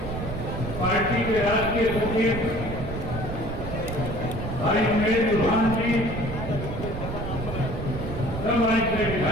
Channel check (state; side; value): noise; right; rumble, 6 dB below the sound